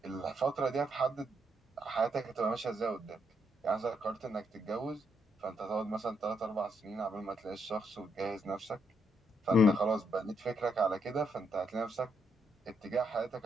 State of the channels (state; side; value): normal; both; correlation 0.76